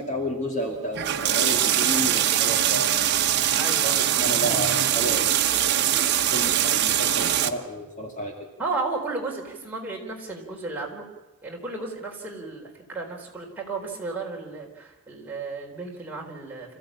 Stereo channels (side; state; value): left; quieter; 7.9 dB